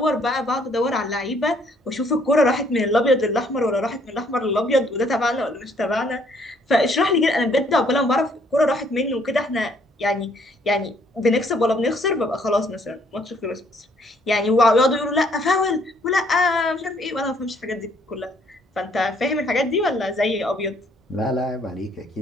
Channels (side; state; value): both; normal; correlation 0.65